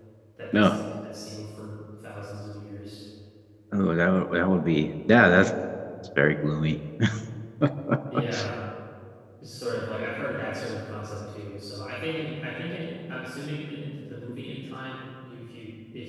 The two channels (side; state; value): both; identical; correlation 1.00